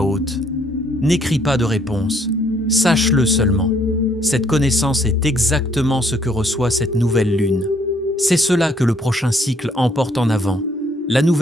haute? N'écris pas de réponse, sache-le seulement. Cette connaissance est exactement ce que reçoit cette nouvelle lune. C'est cela que le prochain cycle emporte en avant. La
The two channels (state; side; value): normal; both; correlation 0.66